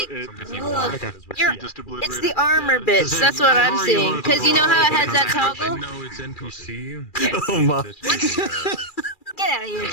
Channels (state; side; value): late; right; 2.4 ms